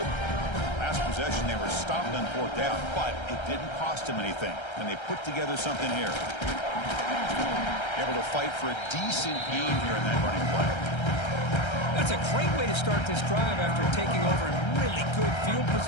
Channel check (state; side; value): late; right; 1.3 ms